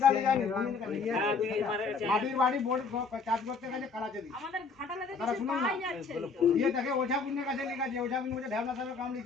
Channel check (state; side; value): quieter; right; 4.7 dB